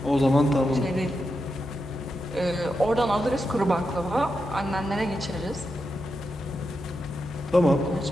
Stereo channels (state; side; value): normal; both; correlation 0.87